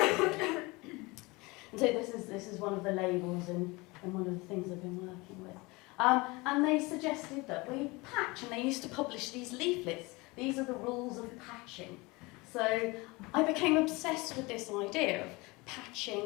be. And so this is one of the labels and one of the things I've been working with. And they suggested that we patch, and they used to publish these leaflets. These are the rules of patching. So I became obsessed with this idea of patching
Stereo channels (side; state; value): right; quieter; 24.3 dB